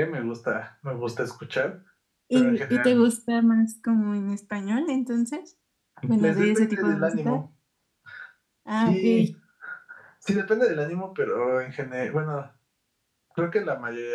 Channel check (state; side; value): identical; both; correlation 1.00